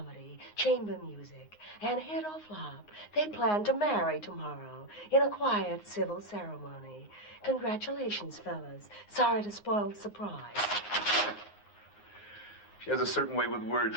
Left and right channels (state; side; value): late; right; 9.6 ms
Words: Chamber Music, and hit or flop, they plan to marry tomorrow in a quiet civil ceremony. Congratulations, fellas. Sorry to spoil the surprise. She has a certain way with words,